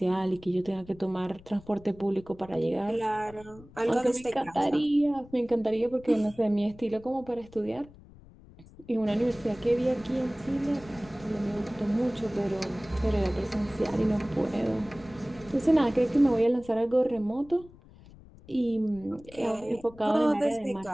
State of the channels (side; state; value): left; noise; rumble, 22 dB below the sound